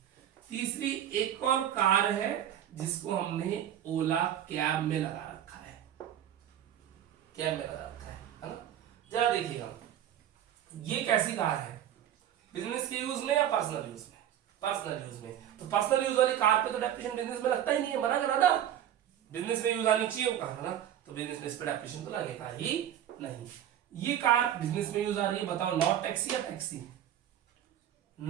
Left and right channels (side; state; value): left; quieter; 10.7 dB